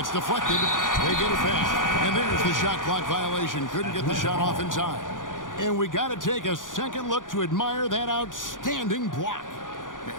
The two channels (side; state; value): right; late; 0.88 ms